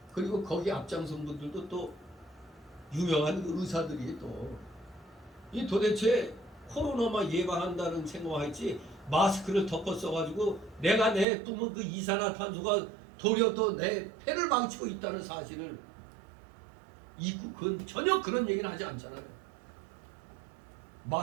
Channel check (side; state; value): left; drops out; at 11.2 s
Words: 그리고 거기 앞장선 분들도 또 유명한 의사들이 또 이 도대체 코로나만 예방한다는 생각하지 마스크를 덮어 써가지고 내가 내 뿜은 그 이산화탄소가 도리어 또 내 폐를 망치고 있다는 사실을 잊고 그건 전혀 그런 얘기는 하지 않잖아요.